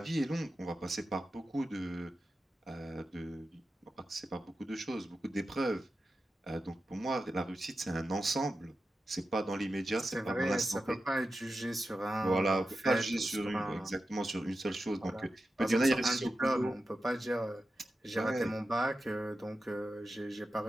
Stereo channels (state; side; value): normal; both; correlation 0.92